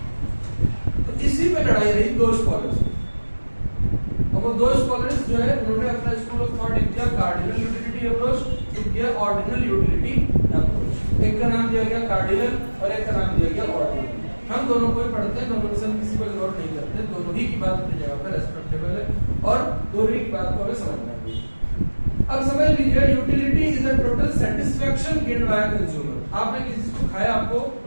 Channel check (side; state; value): both; inverted; correlation -1.00